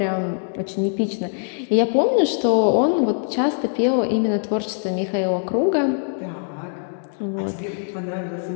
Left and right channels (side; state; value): right; silent; 64 dB below the other